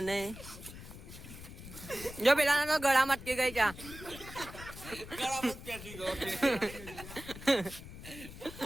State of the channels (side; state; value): left; noise; rumble, 13 dB below the sound